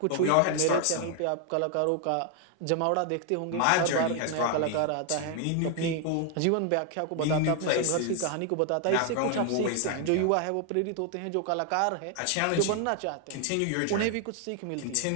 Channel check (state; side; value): different; both; correlation 0.00